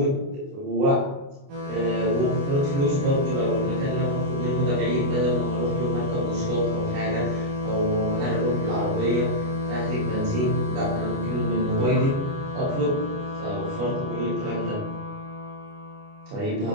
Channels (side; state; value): left; late; 29 ms